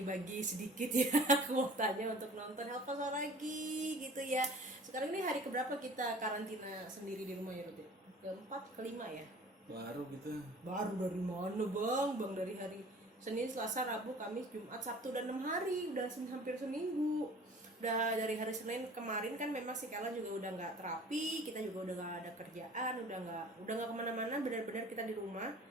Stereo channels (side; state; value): both; normal; correlation 0.46